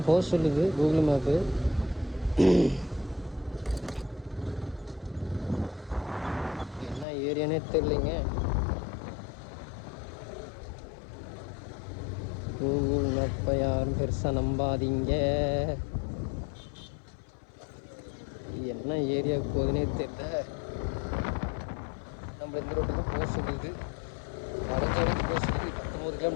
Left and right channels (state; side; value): drops out; right; at 7.1 s